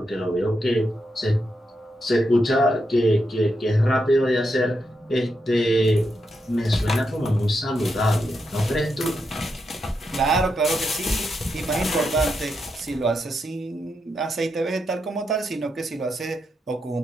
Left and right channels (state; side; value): normal; both; correlation 0.84